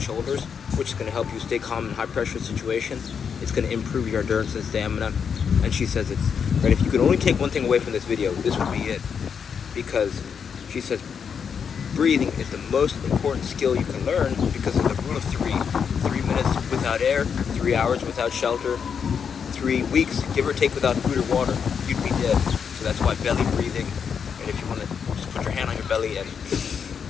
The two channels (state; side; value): quieter; right; 6.8 dB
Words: shoulders, which is going to help you stay calm in high pressure situations. It's going to improve your endurance and stamina. And she says it's right. If you could only take one thing away from this video, this would be it, because she says breathing is the most important skill you can learn because of the rule of 3. 3 minutes without air, 3 hours without shelter, 3 weeks, give or take, without food or water, you'd be dead. So that's why belly breathing. And if you want to just put your hand on your belly and